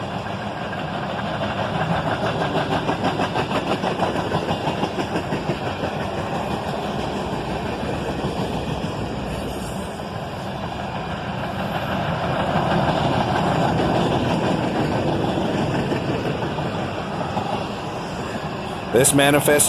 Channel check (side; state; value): both; identical; correlation 1.00